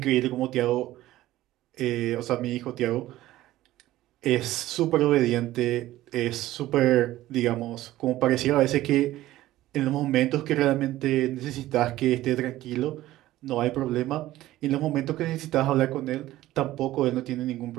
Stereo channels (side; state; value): left; quieter; 15.5 dB